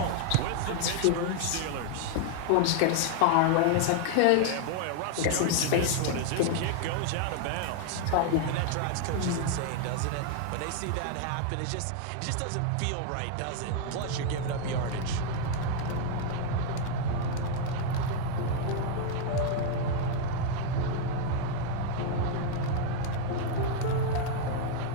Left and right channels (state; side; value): different; both; correlation 0.00